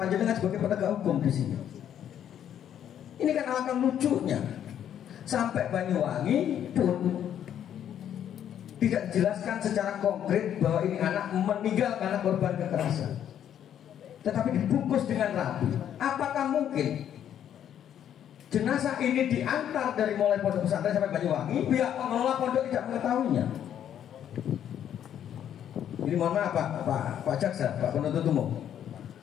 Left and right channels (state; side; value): quieter; right; 9.9 dB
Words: sebagai penegak hukum di sini. Ini kan alangkah lucunya, sampai Banyuwangi pun tidak dijelaskan secara konkret bahwa ini anak meninggal karena korban kekerasan, tetapi dibungkus dengan rapi. Apakah mungkin jenazah ini diantar dari mulai pondok pesantren sampai Banyuwangi, pihak pengelola pondok tidak mengetahuinya? Ini mohon maaf Pak Jaksa, Pak penuntut umum,